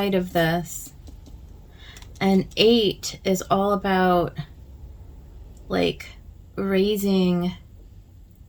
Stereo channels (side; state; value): both; identical; correlation 1.00